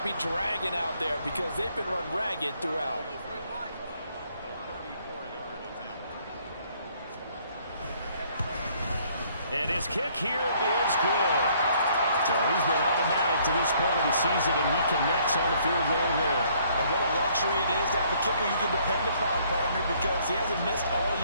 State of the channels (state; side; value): inverted; both; correlation -0.63